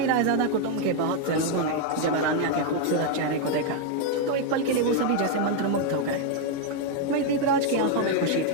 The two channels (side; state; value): both; different; correlation 0.00